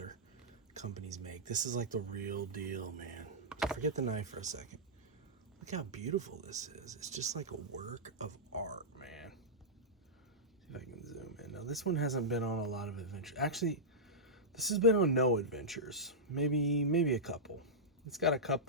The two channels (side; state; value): both; normal; correlation -0.12